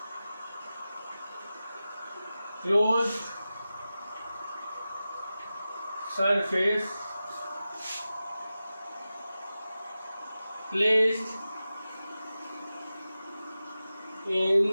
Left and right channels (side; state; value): both; inverted; correlation -0.94